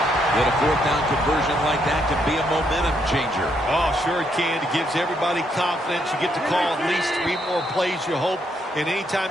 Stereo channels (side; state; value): both; normal; correlation 0.75